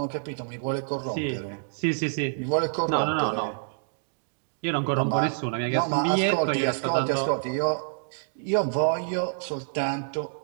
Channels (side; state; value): left; silent; digital silence